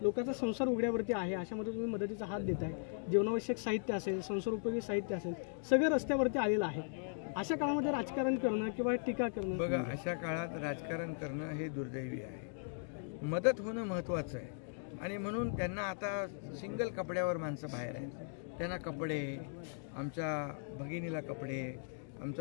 लोकांचा संसार उघड्यावरती आहे, अशामध्ये तुम्ही मदतीचा हात देताय, जीवनावश्यक साहित्य असेल, संसार उपयोगी साहित्य असेल, सगळं रस्त्यावरती आलेलं आहे। अशा काळामध्ये राजकारण करणं किंवा टीका करणं, बघा अशा काळात राजकारण करणं हे दुर्दैवी आहे, मदत होणं महत्त्वाचं आहे आणि म्हणून त्यांना आता सिंगल कपड्यावर माणसं बाहेर आहेत, त्यांना कपडे, आमच्या भगिनीला कपडे,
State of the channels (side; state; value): right; silent; digital silence